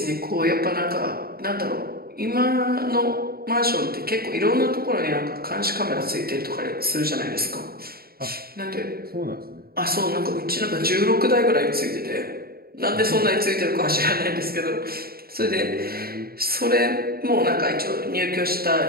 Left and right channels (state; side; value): late; left; 0.44 ms